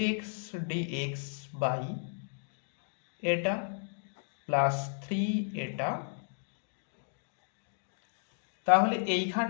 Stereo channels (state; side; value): silent; right; digital silence